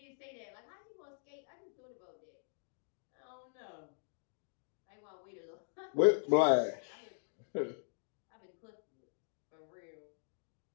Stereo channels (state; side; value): silent; right; digital silence